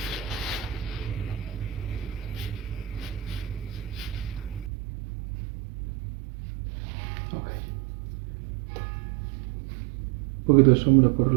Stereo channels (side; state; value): left; drops out; at 4.7 s